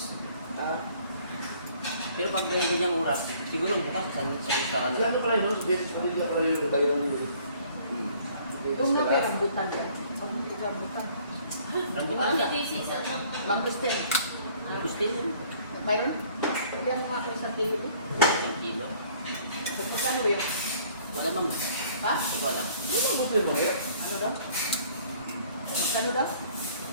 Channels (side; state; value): both; inverted; correlation -0.57